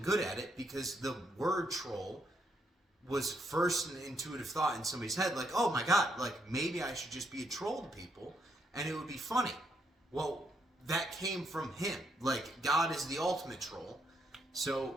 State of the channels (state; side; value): normal; both; correlation 0.75